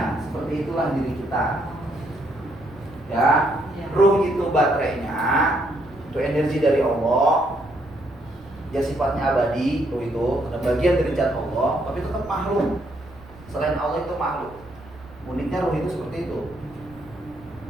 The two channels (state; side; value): noise; right; rumble, 22 dB below the sound